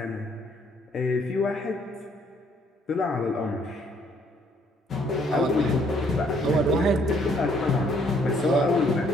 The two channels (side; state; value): both; normal; correlation 0.66